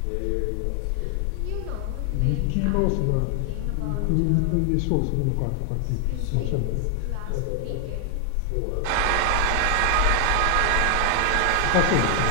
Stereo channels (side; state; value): both; different; correlation 0.00